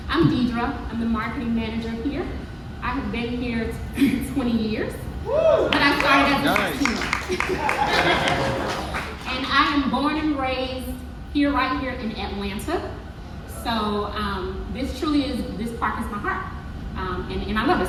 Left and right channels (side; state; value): both; identical; correlation 1.00